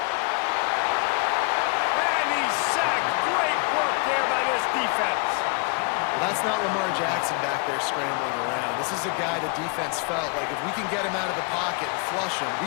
And he's sacked. Great work there by this defense. Well, that's not Lamar Jackson back there scrambling around. This is a guy the defense felt like if we can get him out of the pocket and flush him, we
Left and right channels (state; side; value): quieter; right; 32.3 dB